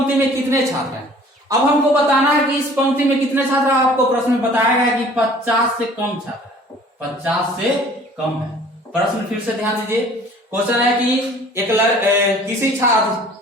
में कितने छात्र हैं। अब हमको बताना है कि इस पंक्ति में कितने छात्र हैं। आपको प्रश्न में बताया गया कि 50 से कम छात्र है, 50 से कम है। प्रश्न फिर से ध्यान दीजिए, क्वेश्चन है कि किसी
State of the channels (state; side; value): normal; both; correlation 0.51